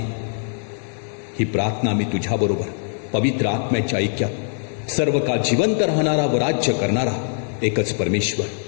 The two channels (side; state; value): right; silent; digital silence